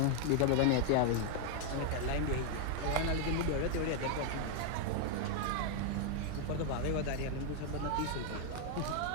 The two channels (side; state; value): both; different; correlation 0.00